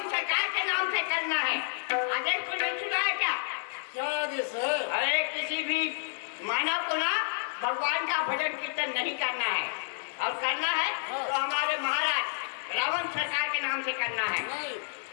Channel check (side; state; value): right; silent; digital silence